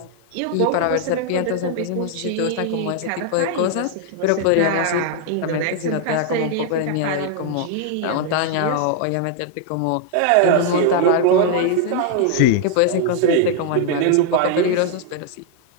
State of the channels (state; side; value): different; both; correlation 0.00